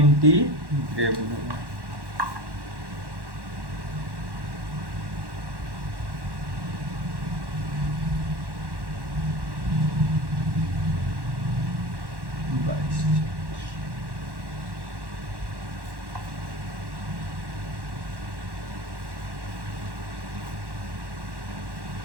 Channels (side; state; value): left; late; 1.1 ms